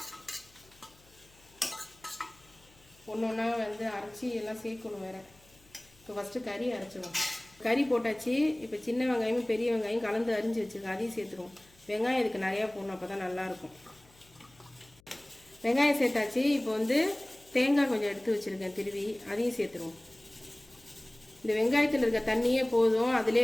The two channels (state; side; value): noise; left; hum, 28 dB below the sound